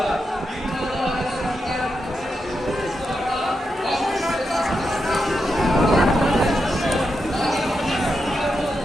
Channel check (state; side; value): normal; both; correlation 0.86